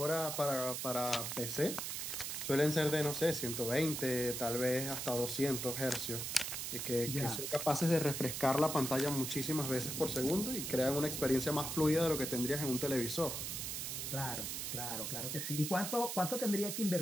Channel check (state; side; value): noise; right; hiss, 4 dB below the sound